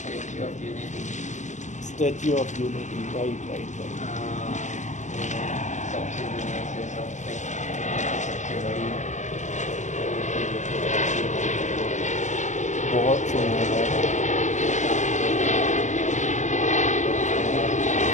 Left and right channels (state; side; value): late; right; 0.35 ms